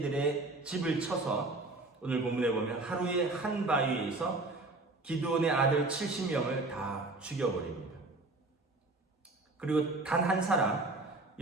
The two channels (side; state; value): left; quieter; 3.1 dB